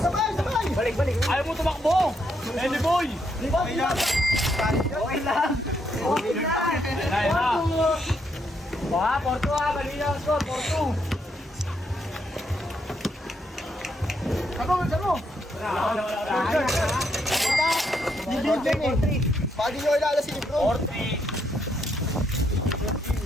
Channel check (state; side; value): normal; both; correlation 0.76